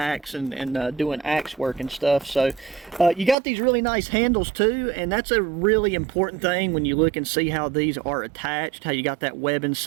and doing axe work and stuff. So you got these really nice handles too, and that's a really important thing when you look and see how these are attached, how you got that webbing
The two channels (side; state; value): left; drops out; at 3.4 s